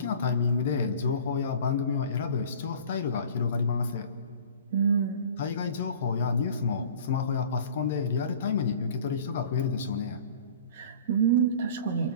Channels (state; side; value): inverted; both; correlation -0.44